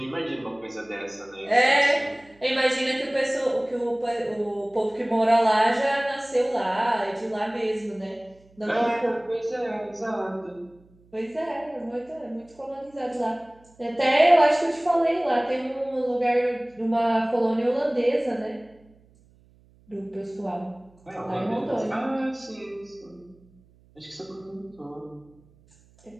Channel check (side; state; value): right; noise; hum, 30 dB below the sound